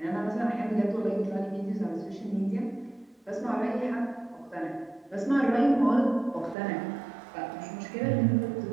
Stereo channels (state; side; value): drops out; left; at 6.6 s